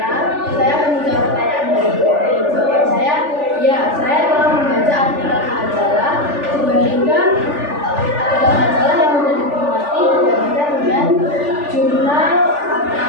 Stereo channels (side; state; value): left; late; 3.4 ms